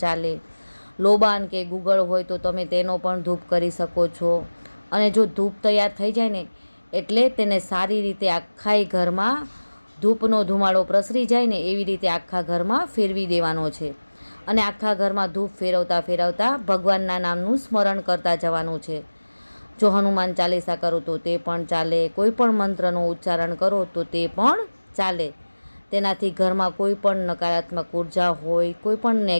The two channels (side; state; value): both; inverted; correlation -1.00